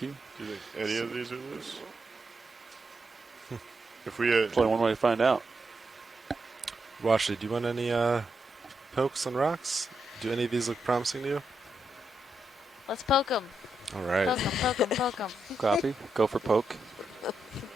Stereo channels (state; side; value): normal; both; correlation 0.83